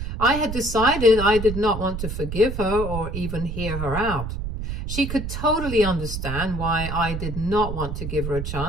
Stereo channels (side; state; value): right; noise; rumble, 5 dB below the sound